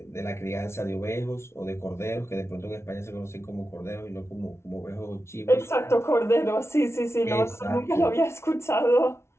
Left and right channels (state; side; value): late; right; 0.13 ms